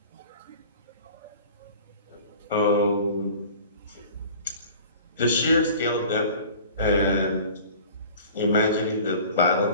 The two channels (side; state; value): both; inverted; correlation -0.44